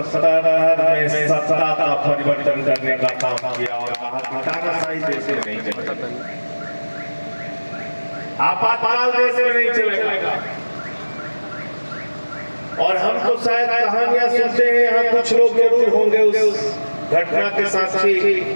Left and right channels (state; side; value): inverted; both; correlation -1.00